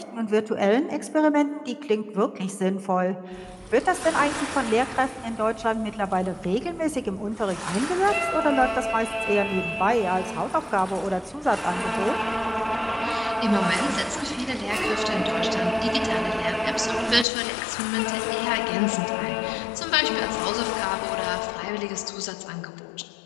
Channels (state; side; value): drops out; right; at 17.2 s